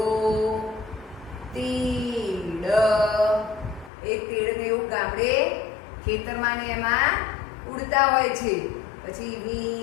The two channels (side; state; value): right; drops out; at 3.9 s